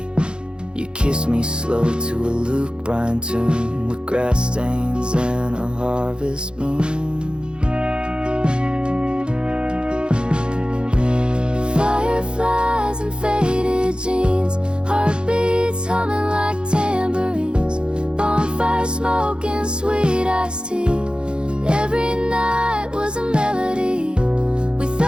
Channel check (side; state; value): left; late; 0.052 ms